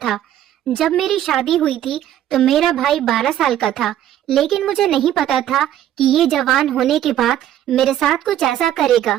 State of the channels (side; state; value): left; quieter; 11.7 dB